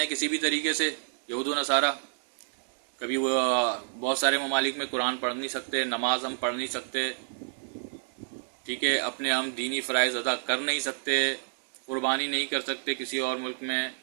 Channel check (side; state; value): left; silent; digital silence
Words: ہیں کسی بھی طریقے سے یہود و نصارہ. کبھی وہ بہت سارے ممالک میں قرآن پڑھ نہیں سکتے، نماز ہم پڑھ نہیں سکتے، ٹھیک ہے، اپنے ہم دینی فرائض ادا کر نہیں سکتے، قربانی نہیں کر سکتے کسی اور ملک میں.